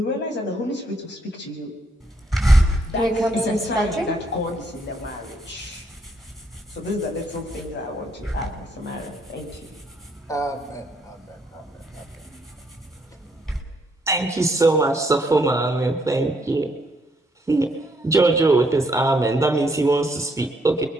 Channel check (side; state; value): both; normal; correlation 0.72